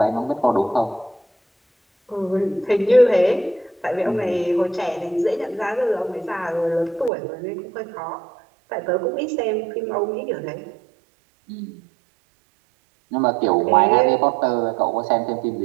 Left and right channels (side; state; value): left; drops out; at 7.1 s